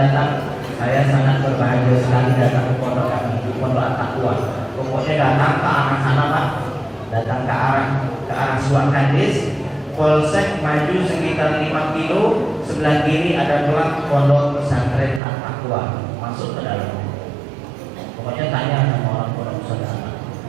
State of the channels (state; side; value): drops out; left; at 15.2 s